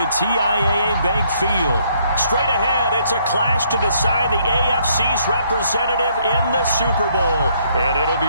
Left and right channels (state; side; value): inverted; both; correlation -0.68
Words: TIAA Bank Field. Straight ahead, it's a clash to decide the AFC's representative in the Super Bowl, and it'll